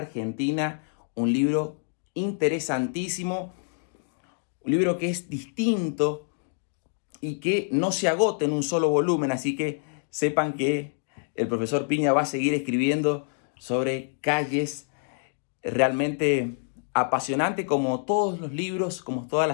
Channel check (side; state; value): right; silent; 60 dB below the other